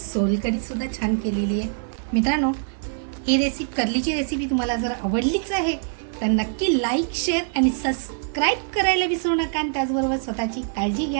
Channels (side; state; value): left; silent; 56 dB below the other